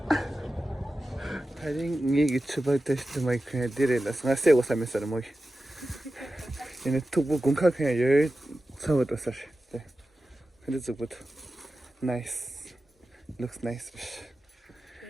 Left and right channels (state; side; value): normal; both; correlation 0.94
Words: 다른 얘기 추바 테스트 마이크 디레라 상세 오사메서 뭐 얘네 투부 공카 그냥 열 사고도 사실 네 근데 저부터 나이스 looks nice